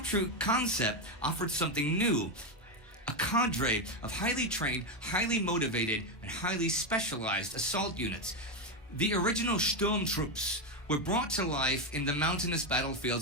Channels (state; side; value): normal; both; correlation 0.09